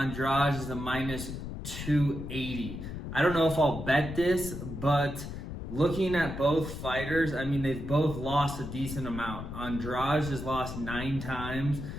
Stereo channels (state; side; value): noise; left; rumble, 8 dB below the sound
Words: is a minus 280. I don't know if I'll bet this, but looking at both fighters, I mean, they've both lost a decent amount. Andrade has lost 9 times.